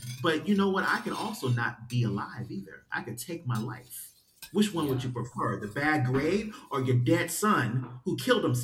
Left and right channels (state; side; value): identical; both; correlation 1.00